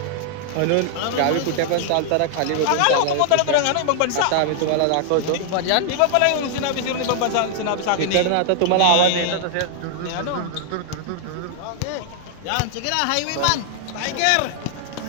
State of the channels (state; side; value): different; both; correlation -0.01